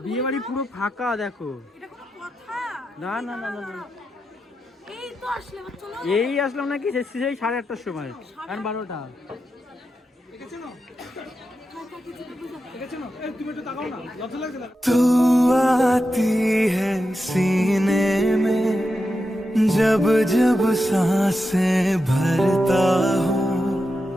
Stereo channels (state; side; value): normal; both; correlation 0.89